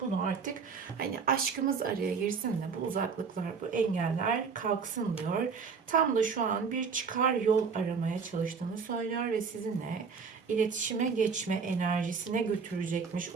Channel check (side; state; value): left; quieter; 5.6 dB